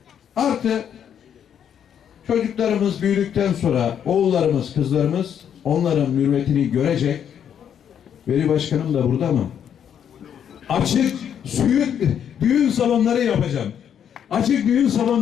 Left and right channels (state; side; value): quieter; right; 8.8 dB